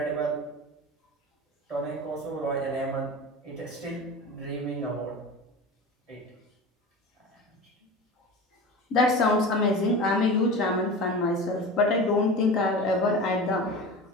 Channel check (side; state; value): both; normal; correlation 0.32